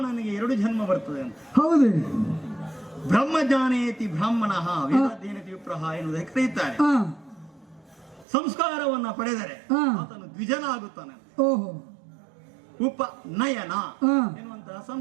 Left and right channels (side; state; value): left; drops out; at 8.2 s